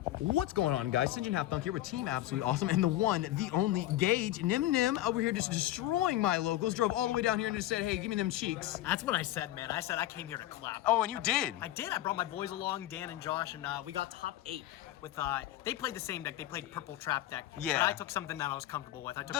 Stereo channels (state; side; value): quieter; right; 14.5 dB